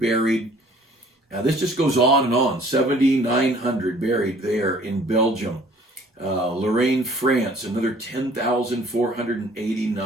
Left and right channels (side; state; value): both; normal; correlation 0.54